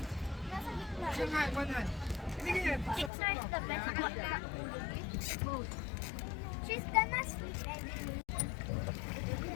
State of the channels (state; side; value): drops out; right; at 3.1 s